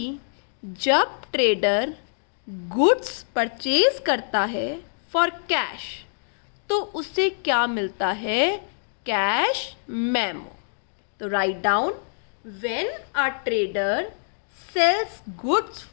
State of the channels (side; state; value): right; silent; digital silence